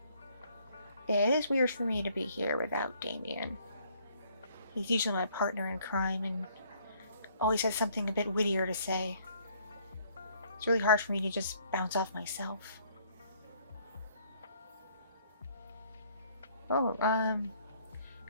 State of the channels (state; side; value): inverted; both; correlation -0.63